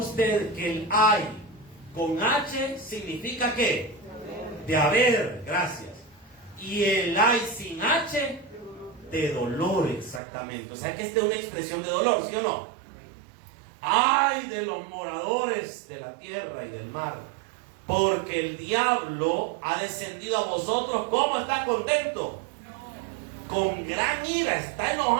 que el hay con H significa ¿qué? De haber, gracias. Y el hay sin H, de dolor, exactamente. O sea que esta es una expresión de dolor, ¿sí o no? Ay de los moradores de la tierra y del mar, porque el diablo ha descendido a vosotros. ¿Cómo está contento? Con gran ira, está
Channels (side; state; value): left; drops out; at 10.2 s